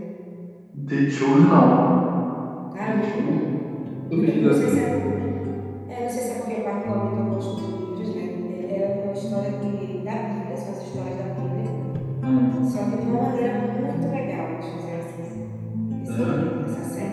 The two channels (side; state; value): both; identical; correlation 1.00